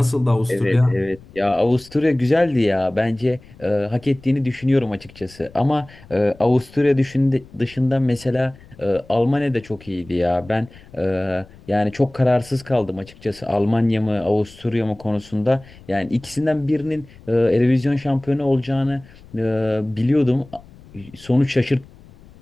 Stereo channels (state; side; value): noise; left; rumble, 23 dB below the sound